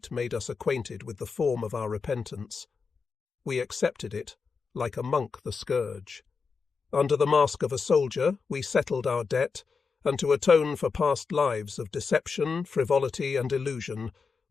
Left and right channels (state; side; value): quieter; right; 5.1 dB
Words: made us acquainted with the form of our repentance. We accepted it, like a monk the scourge. Under the mask of a soldier, we settled our debt, and to atone for past lives of deception, frivolity, and illusion,